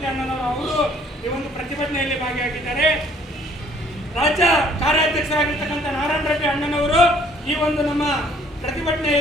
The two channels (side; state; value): both; normal; correlation 0.59